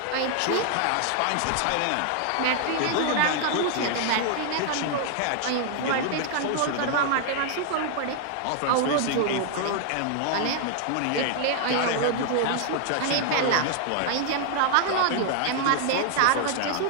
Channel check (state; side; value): different; both; correlation 0.00